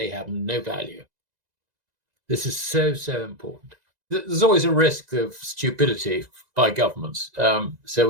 have no value. This is so, so important. There's always a risk of stupidity by governments, so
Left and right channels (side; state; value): left; late; 1.9 ms